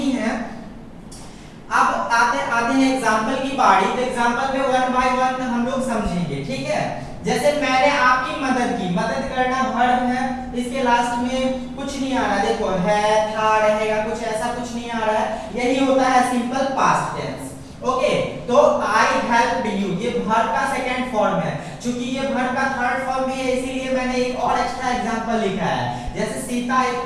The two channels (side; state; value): both; identical; correlation 1.00